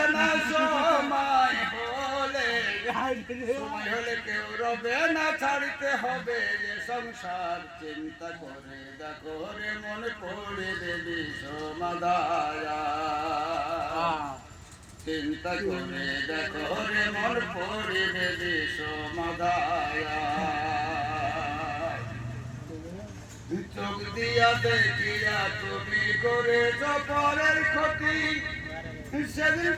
না সময় হলে কেউ রবে না ছাড়তে হবে যে সংসার চিন্তা করে দেখো রে মন পড়ে দেবী সমাদায়া চিন্তা করে দেখো রে মন পড়ে দেবী সমাদায়া চোখ দিয়া দেখিয়া তুমি করেছ পরের ক্ষতি সেদিন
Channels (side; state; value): both; identical; correlation 1.00